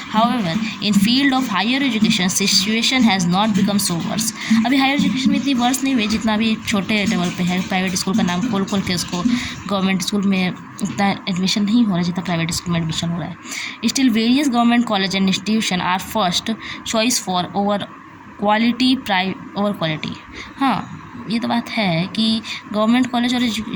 However in field of higher education situation has not become so worse. अभी हायर एजुकेशन में इतनी वर्स नहीं हुई जितना अभी छोटे लेवल पे है. प्राइवेट स्कूल का नाम खोल के उसको गवर्नमेंट स्कूल में उतना एडमिशन नहीं हो रहा जितना प्राइवेट स्कूल में एडमिशन हो रहा है. Still various government college and institution are first choice for over quality हाँ, ये तो बात है कि गवर्नमेंट कॉलेज और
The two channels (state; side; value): identical; both; correlation 1.00